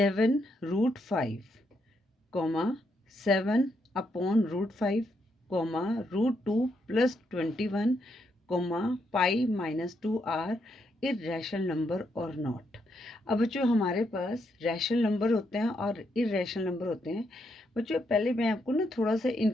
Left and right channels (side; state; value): both; normal; correlation 0.78